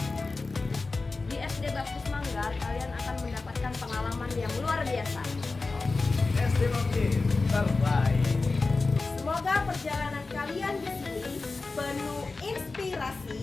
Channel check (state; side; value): quieter; right; 3.8 dB